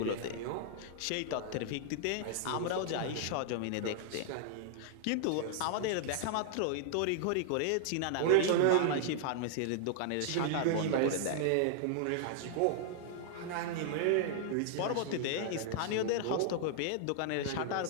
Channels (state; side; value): different; both; correlation -0.01